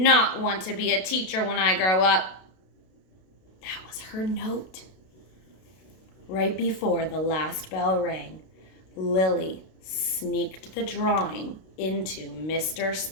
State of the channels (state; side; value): late; right; 32 ms